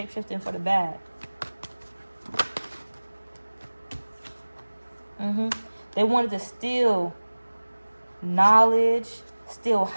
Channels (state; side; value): inverted; both; correlation -1.00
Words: for the bad. They wanted to steal knowledge, steal